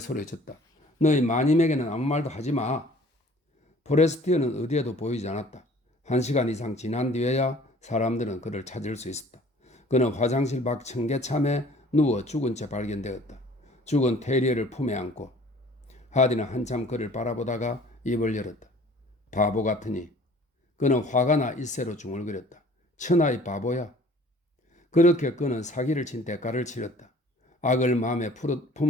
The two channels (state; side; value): normal; both; correlation 0.51